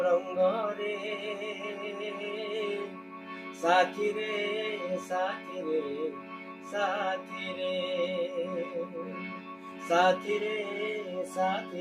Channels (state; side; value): identical; both; correlation 1.00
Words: রঙ্গরে সাথী রে সাথী রে সাথী রে সাথী রে